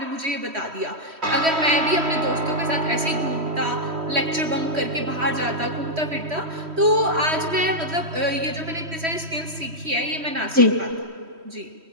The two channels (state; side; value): late; left; 3.1 ms